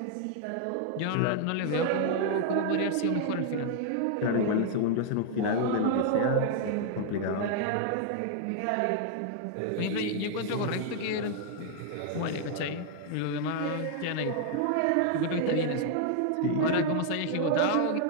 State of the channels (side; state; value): both; different; correlation -0.01